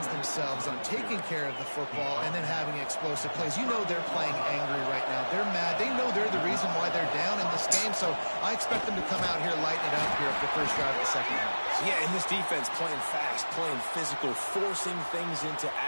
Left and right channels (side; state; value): both; inverted; correlation -1.00